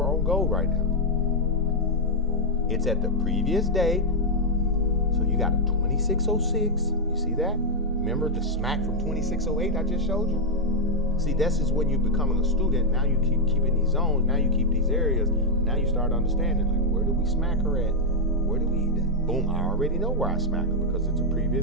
on gold right now? It's at the previous day. So you got a 2606. You see that? Remember the smack from 2608 I just showed you? See, this is when you becoming a student. Now you keep keeping these zones. Now you keep these areas. Now you start understanding, like, where do we smack her at? Where do we eat that? Boom, I already know where I smack her because it's a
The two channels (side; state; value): both; normal; correlation -0.01